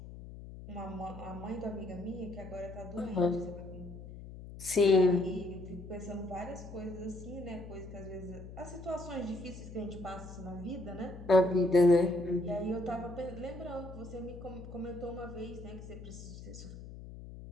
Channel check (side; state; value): left; noise; hum, 13 dB below the sound